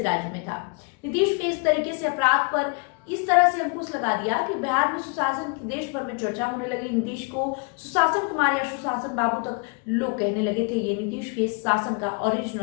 राज्य में था। नीतीश के इस तरीके से अपराध पर इस तरह से अंकुश लगा दिया कि बिहार में सुशासन की देश भर में चर्चा होने लगी। नीतीश को सुशासन कुमार या सुशासन बाबू तक लोग कहने लगे थे। ये नीतीश के शासन का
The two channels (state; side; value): quieter; right; 34.2 dB